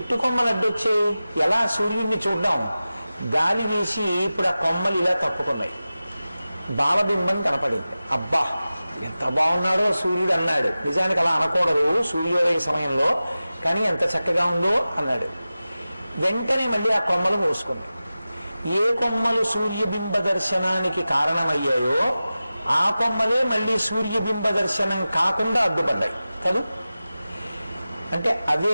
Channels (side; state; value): both; inverted; correlation -0.95